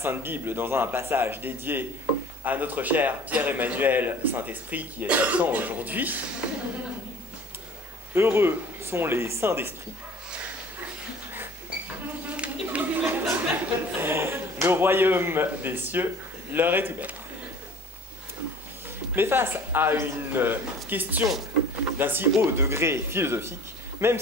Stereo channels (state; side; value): normal; both; correlation 0.46